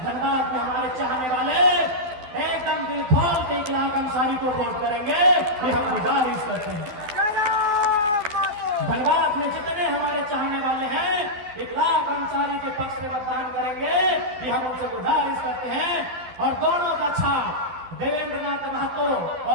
धनबाद में हमारे चाहने वाले एकदम दिल खोल के इकलाक अंसारी को वोट करेंगे, ये हम गुजारिश करते हैं। धनबाद में जितने हमारे चाहने वाले हैं इकलाक अंसारी के पक्ष में मतदान करेंगे, ये हम उनसे गुजारिश करते हैं। और दोनों का छाप देवेंद्र नाथ महतो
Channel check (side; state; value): left; late; 12 ms